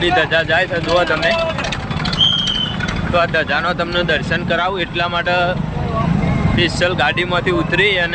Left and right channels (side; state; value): both; identical; correlation 1.00